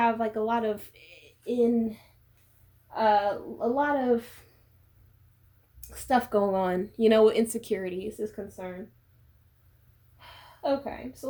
like a lot of stuff going on, you know, with insecurities is concerned. Okay,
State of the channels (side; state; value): both; identical; correlation 1.00